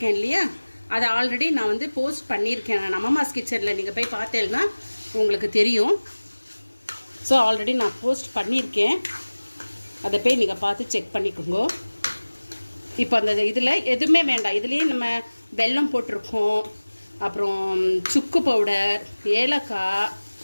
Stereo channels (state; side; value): inverted; both; correlation -1.00